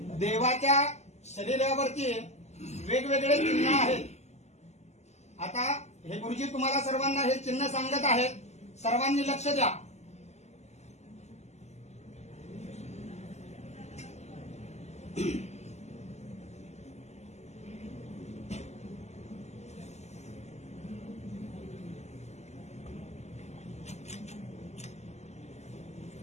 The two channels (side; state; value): right; late; 0.33 ms